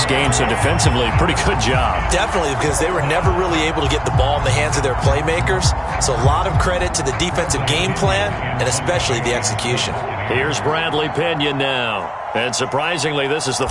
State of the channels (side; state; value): both; identical; correlation 1.00